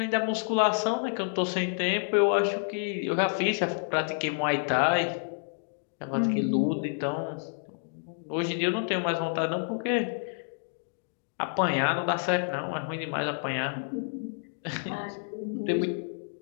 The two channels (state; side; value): silent; right; digital silence